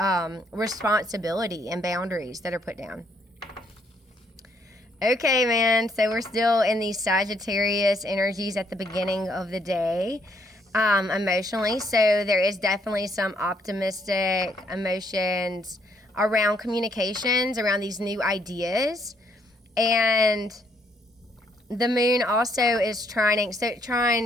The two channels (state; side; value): normal; both; correlation 0.70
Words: responsibility and boundaries that are put down. Okay, man, so we're still in these Sagittarius energies at the beginning of the day, emotionally. So there is definitely some optimistic emotions around communications, around these new ideas. And the moon also is trining. So it